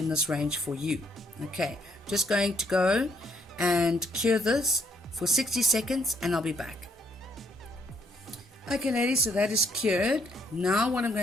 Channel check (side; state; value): both; normal; correlation 0.70